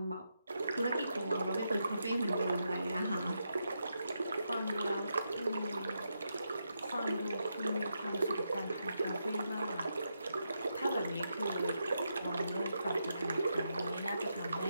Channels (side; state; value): both; inverted; correlation -0.83